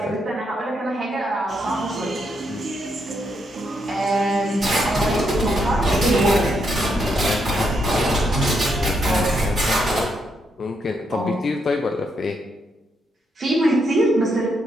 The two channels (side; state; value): both; normal; correlation 0.78